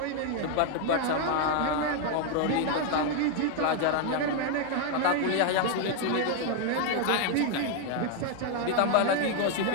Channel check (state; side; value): different; both; correlation 0.00